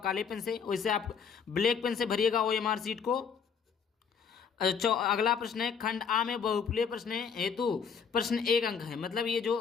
पेन से, वैसे आप ब्लैक पेन से भरिएगा ओएमआर सीट को। अगला प्रश्न है, खंड आ में बहुविकल्पीय प्रश्न हेतु प्रश्न 1 अंक है, मतलब ये जो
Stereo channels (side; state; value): right; quieter; 6.4 dB